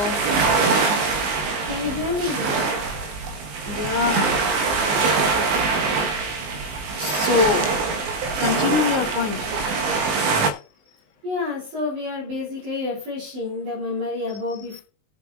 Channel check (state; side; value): late; left; 19 ms